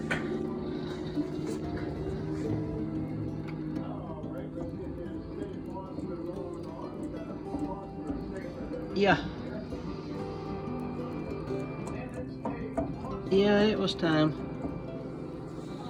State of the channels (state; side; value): identical; both; correlation 1.00